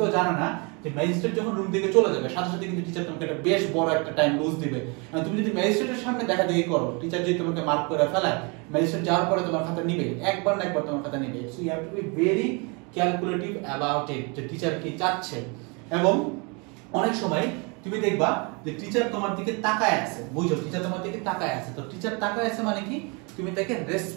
জানে না যে ম্যাজিস্ট্রেট যখন রুম থেকে চলে যাবে সাথে সাথে কিন্তু টিচার তোমাকে একটা বেশ বড় একটা টাইম লুজ দিবে। তুমি যদি ম্যাজিস্ট্রেটের সামনে দেখা দেখি করো, টিচার যদি তোমাকে মার্ক করে ফেলায়, ম্যাজিস্ট্রেট যাওয়ার পরে তোমার খাতা নিবে, একবার না একবার তোমার খাতা নিবে। So you have to be very calculative about it, যে টিচার কি চাচ্ছে। এবং অনেক সময় তুমি দেখবা যে টিচার তোমার দিকে তাকায় আছে, বুঝছো, টিচার তোমার দিকে তাকায় আছে। তো টিচার তাকায় আছে মানে কি, তুমি তাকে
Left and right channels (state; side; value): quieter; left; 31.4 dB